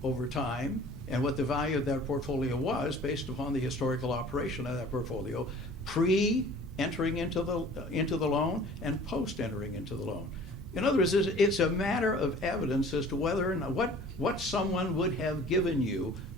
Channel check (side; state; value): both; normal; correlation 0.48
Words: over time and what the value of that portfolio was based upon the historical operation of that portfolio pre-entering into the loan and post-entering into the loan. In other words, it's a matter of evidence as to whether or not what someone would have given you